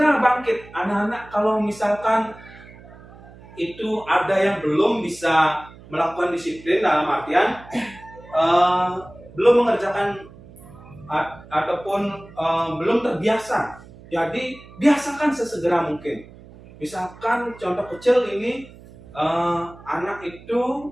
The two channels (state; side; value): noise; right; hum, 20 dB below the sound